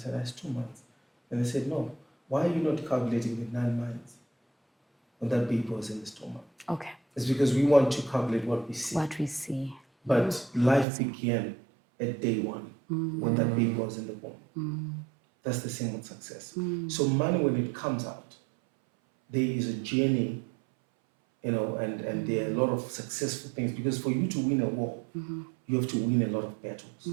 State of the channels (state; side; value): drops out; left; at 10.9 s